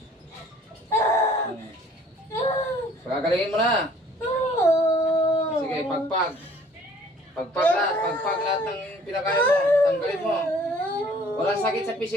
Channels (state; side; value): normal; both; correlation 0.55